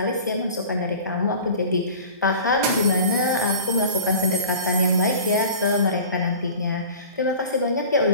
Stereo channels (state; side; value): inverted; both; correlation -0.40